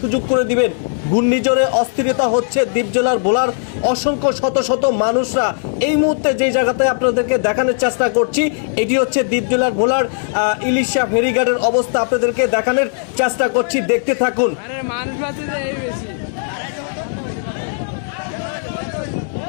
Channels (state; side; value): silent; right; digital silence